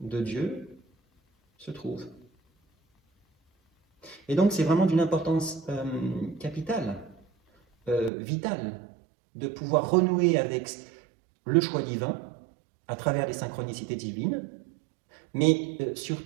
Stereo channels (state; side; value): drops out; left; at 8.1 s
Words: Dieu se trouve. Et donc c'est vraiment d'une importance capitale, vitale, de pouvoir renouer avec le choix divin à travers les synchronicités divines, mais